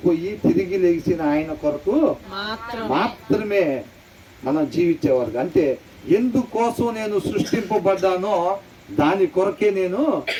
తిరిగి లేచిన ఆయన కొరకు మాత్రమే మనం జీవించేవారు. అంటే ఎందుకోసం నేను సృష్టింపబడ్డానో దాని కొరకే నేను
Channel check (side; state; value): both; identical; correlation 1.00